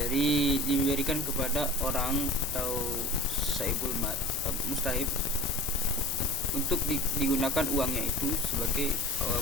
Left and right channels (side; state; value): both; normal; correlation 0.38